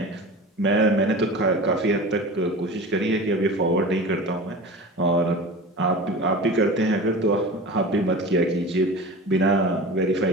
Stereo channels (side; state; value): both; normal; correlation 0.34